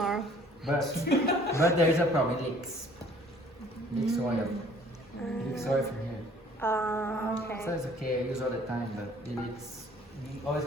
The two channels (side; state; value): both; normal; correlation 0.55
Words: But there is a problem. It leaks. Leaks oil. Leaks oil from here. So Okay. it's okay. I use all the time, but it leaks. It always